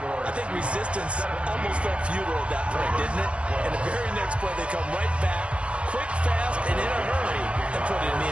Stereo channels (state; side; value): late; left; 0.060 ms